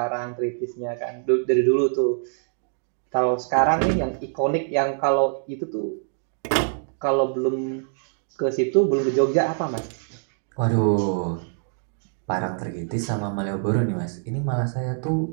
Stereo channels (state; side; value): silent; left; 62 dB below the other